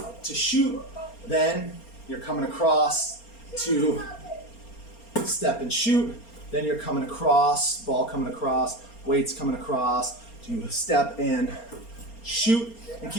to shoot, then you're coming across to step and shoot, then you're coming across, ball coming across, weights coming across, to step and shoot, and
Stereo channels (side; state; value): right; late; 4.3 ms